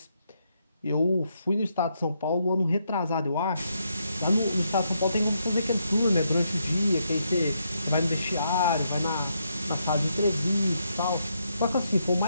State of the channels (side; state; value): both; inverted; correlation -0.78